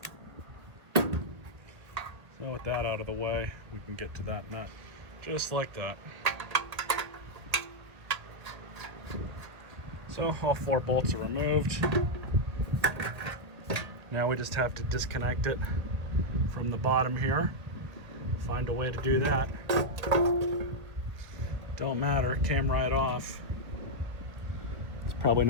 So with that out of the way, we can get to that nut. Just like that. So all 4 bolts are removed. Now we just have to disconnect it from the bottom here. Find a way to do that. Don't matter, it came right off. It's probably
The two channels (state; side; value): late; left; 1.7 ms